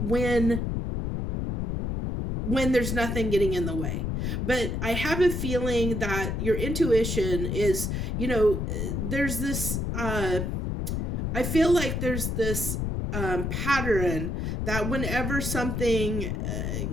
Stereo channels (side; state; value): left; noise; rumble, 1 dB below the sound